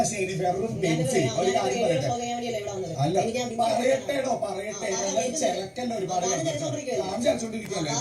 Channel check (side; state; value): both; identical; correlation 1.00